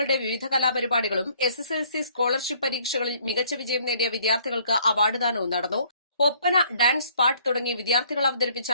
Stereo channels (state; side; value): inverted; both; correlation -0.61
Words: വിവിധ കലാപരിപാടികളും SSLC സ്കോളർഷിപ്പ് പരീക്ഷകളിൽ മികച്ച വിജയം നേടിയ വിദ്യാർത്ഥികൾക്ക് അവാർഡ് ദാനവും നടന്നു. ഒപ്പന, ഡാൻസ്, പാട്ട് തുടങ്ങി വിദ്യാർത്ഥികൾ അവതരിപ്പിച്ച